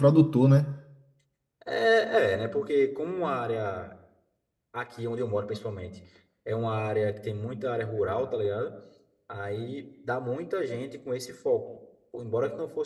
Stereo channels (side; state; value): both; identical; correlation 1.00